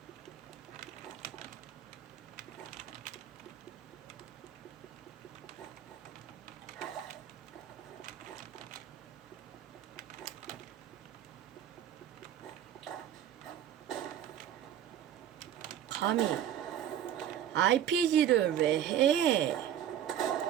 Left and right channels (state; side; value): quieter; left; 10.5 dB